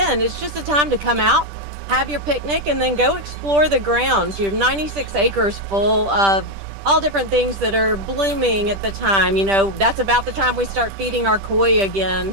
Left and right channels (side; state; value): left; late; 10 ms